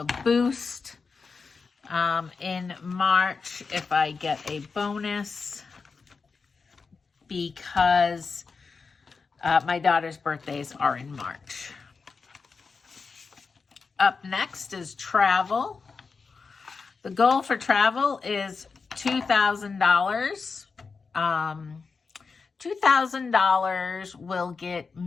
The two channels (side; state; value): right; quieter; 4.8 dB